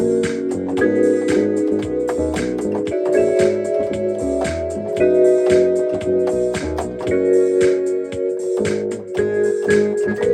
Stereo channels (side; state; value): both; identical; correlation 1.00